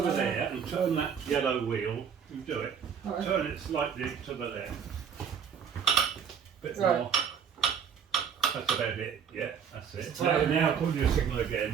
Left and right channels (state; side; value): quieter; left; 7.4 dB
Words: there and turn that yellow wheel. You do it. Right. Turn it slightly to the left. Bit Right. more. That's about it. Yeah, that's it. Now pull your signal